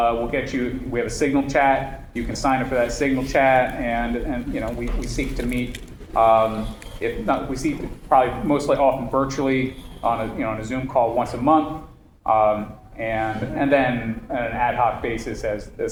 get you. We have a Signal chat. You can sign up for that Signal chat, and we seek to meet. If not, we see probably mostly often virtually on a Zoom call once a month, and then on an ad hoc basis as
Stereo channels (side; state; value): both; identical; correlation 1.00